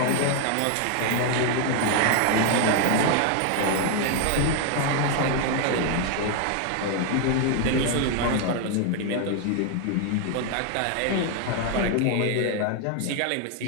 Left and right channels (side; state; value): both; different; correlation 0.01